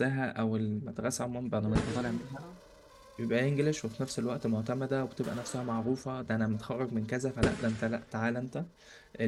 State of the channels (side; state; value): both; identical; correlation 1.00